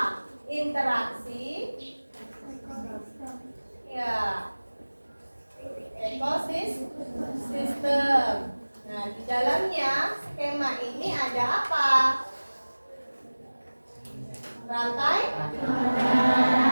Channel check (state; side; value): inverted; both; correlation -1.00